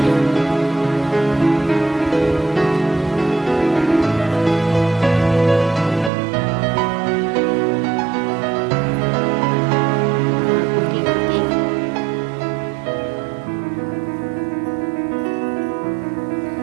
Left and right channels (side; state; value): left; drops out; at 6.1 s